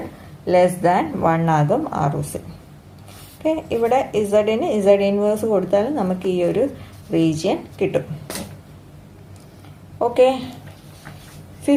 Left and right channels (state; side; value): identical; both; correlation 1.00